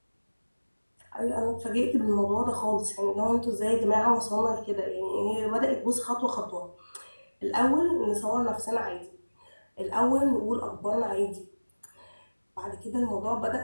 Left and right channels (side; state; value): both; inverted; correlation -1.00